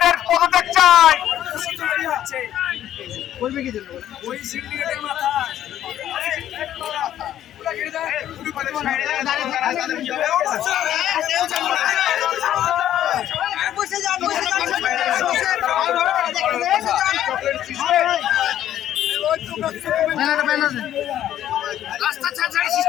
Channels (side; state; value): right; quieter; 11.7 dB